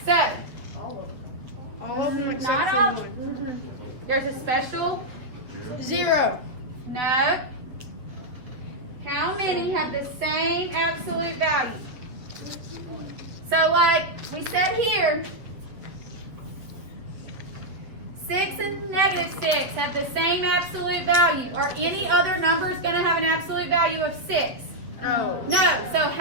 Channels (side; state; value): left; late; 7.4 ms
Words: So, All of them Not except all. for one. there's a special 0. no. How many have the same absolute value? So like we said here, 6 and negative 6 have the same absolute value. Are any other numbers going to have an absolute value of 6? No. No. So